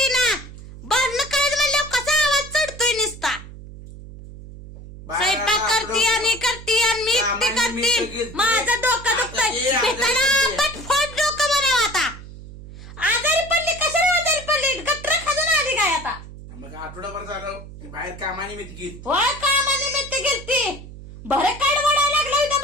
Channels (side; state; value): right; noise; hum, 15 dB below the sound